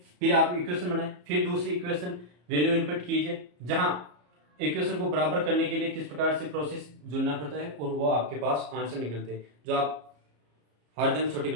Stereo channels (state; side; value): late; left; 34 ms